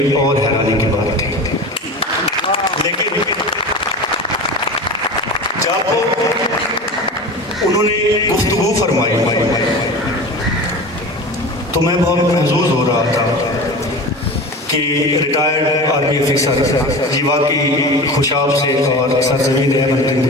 और हैरानी की बात थी। लेकिन जब उन्होंने गुफ्तगू फरमाई तो मैं बहुत महसूस हो रहा था कि रिटायर्ड आर्मी ऑफिसर ये वाकई खुशाब से और सरजमीन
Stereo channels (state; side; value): normal; both; correlation 0.32